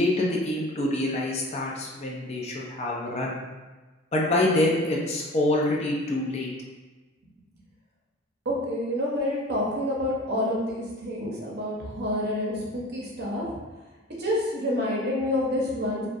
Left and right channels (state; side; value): normal; both; correlation 0.40